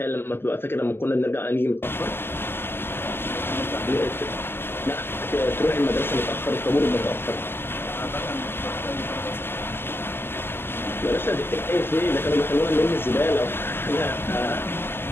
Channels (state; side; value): late; right; 0.11 ms